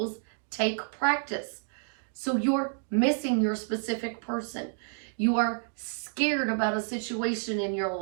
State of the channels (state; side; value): silent; left; digital silence